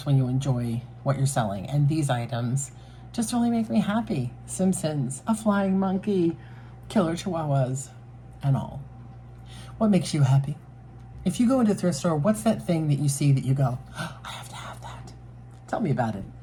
when you enjoy what you're selling. And these items just really make me happy. Simpsons, a flying monkey, killer chihuahuas, and all. What makes you happy? If you go into a thrift store, what's that thing that you see that you go, oh, I have to have that? Tell me about it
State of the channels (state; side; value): identical; both; correlation 1.00